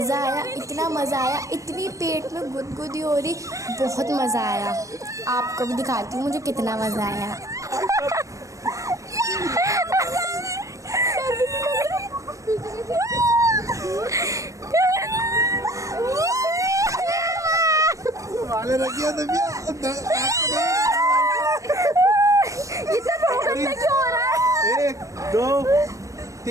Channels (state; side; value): late; left; 0.16 ms